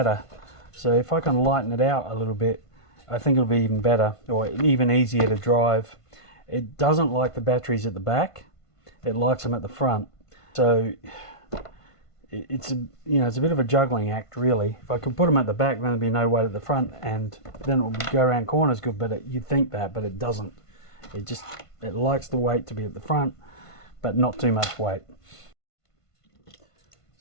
So if I can lighten it out a little bit, I think it'll be even better, or even easier to drive. It doesn't like the batteries at the back, it likes them at the front. So it's a bit of a juggling act, really. If I could put them at the back, then there'd be no weight at the front, and then it would go around corners good. But you'd think that, but it doesn't. It likes the weight to be at the front, but not too much weight.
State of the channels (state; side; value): late; right; 1.5 ms